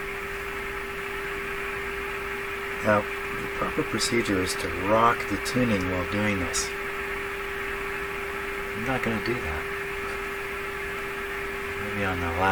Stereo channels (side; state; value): both; identical; correlation 1.00